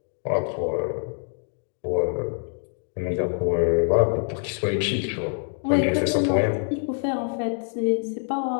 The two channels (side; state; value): right; silent; 62 dB below the other